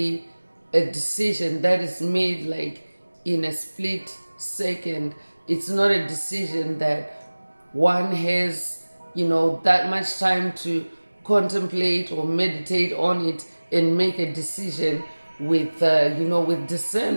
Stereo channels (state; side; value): inverted; both; correlation -1.00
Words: a decision that is made like in a split second. It's not a decision that one has that much time to contemplate or meditate on it and make a decision with with